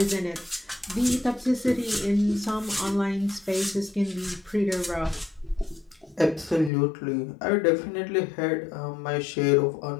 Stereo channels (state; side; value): drops out; right; at 6.7 s